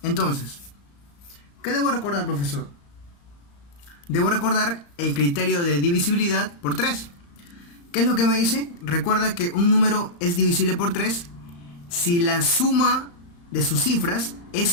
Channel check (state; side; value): late; right; 35 ms